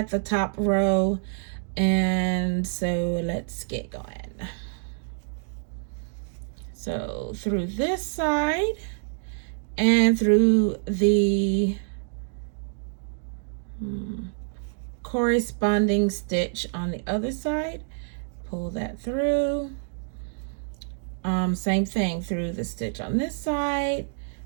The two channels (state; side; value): silent; left; digital silence